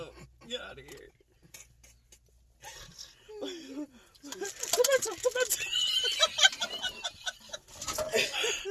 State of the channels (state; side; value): identical; both; correlation 1.00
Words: Get out of here. Come back to